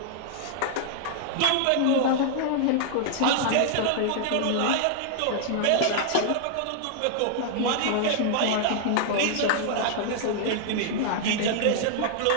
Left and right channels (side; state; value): both; different; correlation -0.01